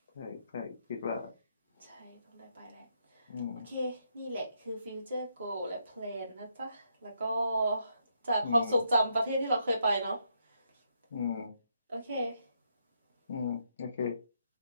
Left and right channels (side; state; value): both; inverted; correlation -0.77